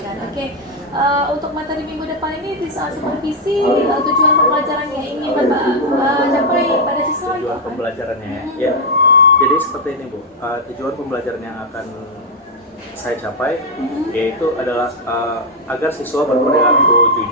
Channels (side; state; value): both; normal; correlation 0.01